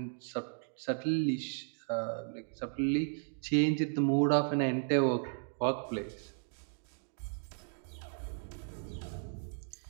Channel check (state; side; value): silent; left; digital silence